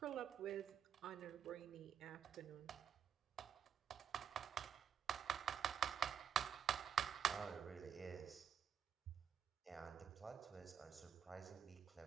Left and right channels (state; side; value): quieter; left; 8.2 dB